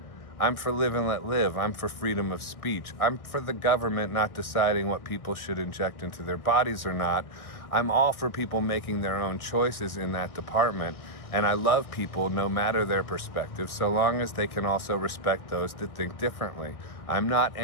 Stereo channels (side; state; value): right; late; 1.6 ms